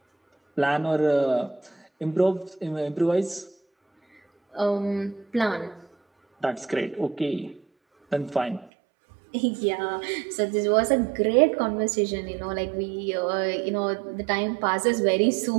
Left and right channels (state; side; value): drops out; left; at 8.7 s